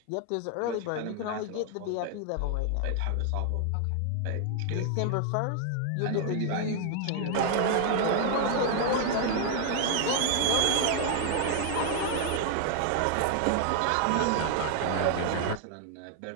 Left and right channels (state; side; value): different; both; correlation 0.00